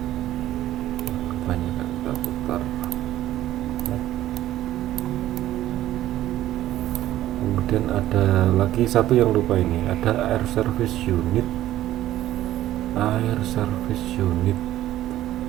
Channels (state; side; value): quieter; left; 13.8 dB